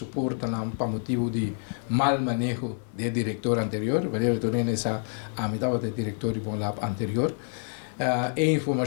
para motivo de mal manejo do diretor anterior, vai retornar nessa a metade do diretor de bom lap anterior. E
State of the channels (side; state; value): right; silent; 60 dB below the other